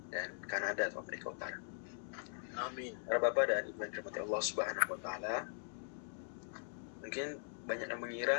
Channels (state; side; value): silent; right; digital silence